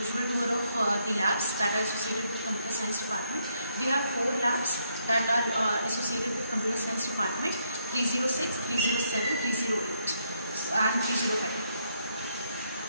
tour of the labs that are associated with computer science department. We have 4 labs that are associated with computer science department: 306, 307, 308 and 305.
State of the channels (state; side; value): inverted; both; correlation -0.74